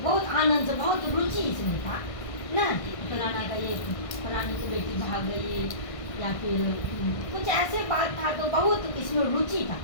बहुत आनंद से, बहुत रुचि इसमें था ना। फलाना का ये, फलाने की बेटी भाग गई, या फिर कुछ ऐसे बात था, तो बहुत इसमें रुचि था,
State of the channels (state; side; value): late; right; 1.5 ms